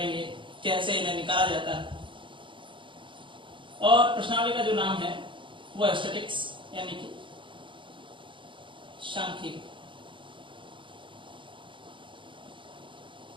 कैसे इन्हें निकाला जाता है। और प्रश्नावली का जो नाम है वो स्टैटिक्स यानी कि सांख्यिकी।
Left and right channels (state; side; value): late; left; 0.24 ms